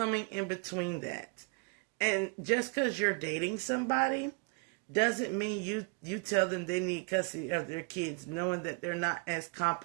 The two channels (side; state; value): left; quieter; 33.3 dB